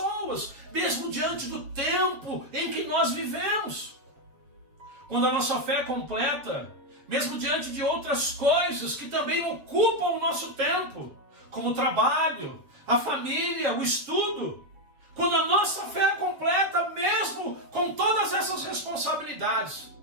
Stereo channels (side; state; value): left; late; 7.5 ms